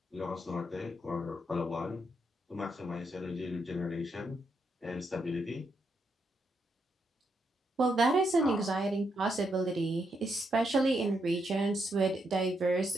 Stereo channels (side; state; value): both; normal; correlation 0.80